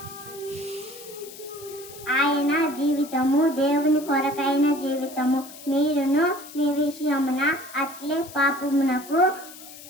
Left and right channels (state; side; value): noise; left; hiss, 16 dB below the sound